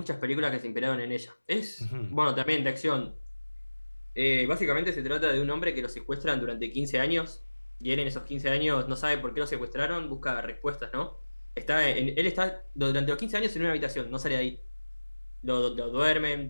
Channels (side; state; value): both; inverted; correlation -1.00